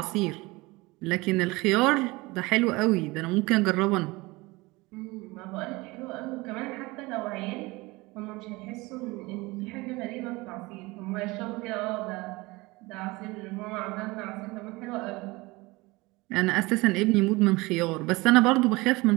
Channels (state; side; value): quieter; left; 22.7 dB